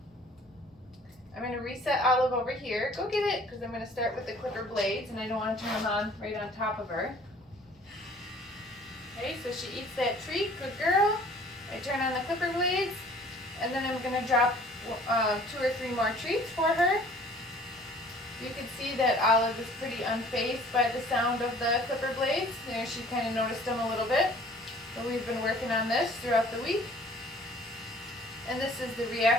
I'm going to reset Olive over here. Go get it, because I'm going to start with the clipper blades, and I don't want to turn them on right on top of her. Okay, so she eats that treat. Good girl. I turn on the clipper blades, and then I'm going to drop 2 or 3 more treats for her. You can see that Olive is pretty unfazed by the sound of the clipper blades. There, she kind of noticed them a little bit. So we've been working on this throughout the week. And this is the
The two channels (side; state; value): both; normal; correlation 0.52